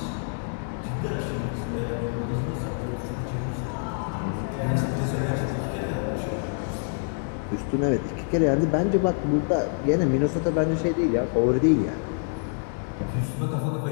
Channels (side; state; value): right; silent; digital silence